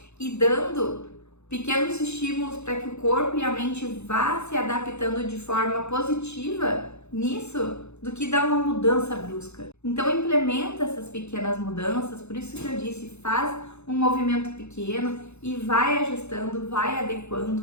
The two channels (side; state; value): right; late; 0.81 ms